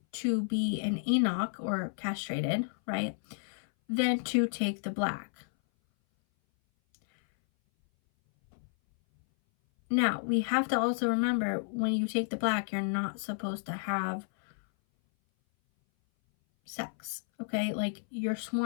to be an eunuch or castrated, right, than to take the black. Now, we have to also remember, when you take the black, you're not supposed to have sex, okay? Like, you're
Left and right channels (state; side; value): silent; right; 57 dB below the other